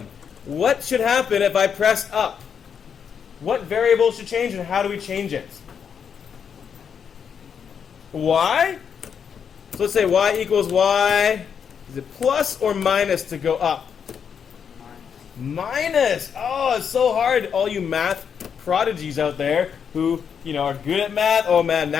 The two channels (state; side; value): quieter; right; 7.2 dB